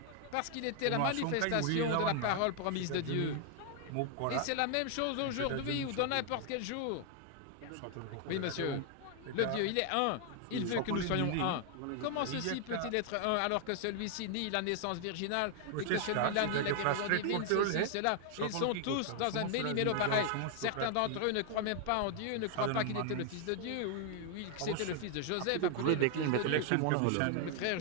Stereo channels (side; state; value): both; different; correlation 0.00